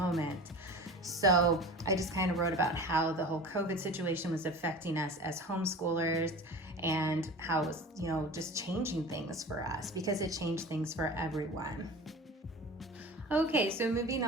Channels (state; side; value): normal; both; correlation 0.36